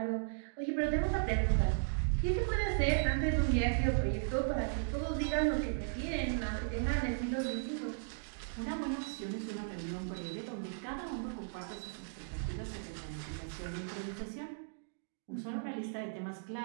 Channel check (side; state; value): left; silent; digital silence